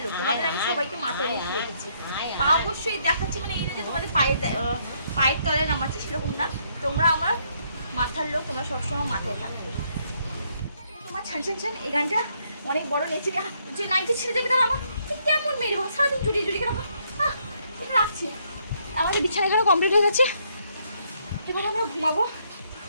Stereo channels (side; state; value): both; inverted; correlation -0.71